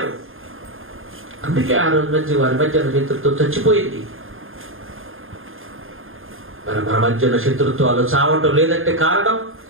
అందుకే ఆ రోజు నుంచి వారి మధ్య శత్రుత్వం చచ్చిపోయింది. మరి మన మధ్య ఉన్న శత్రుత్వాలు చావటం లేదంటే కారణం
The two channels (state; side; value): late; left; 0.59 ms